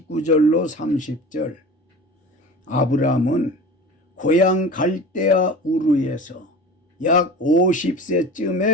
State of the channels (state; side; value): normal; both; correlation 0.36